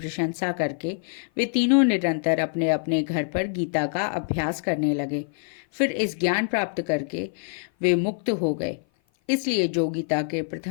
करके वे तीनों निरंतर अपने अपने घर पर गीता का अभ्यास करने लगे। फिर इस ज्ञान प्राप्त करके वे मुक्त हो गए। इसलिए जो गीता के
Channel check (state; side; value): silent; right; 55 dB below the other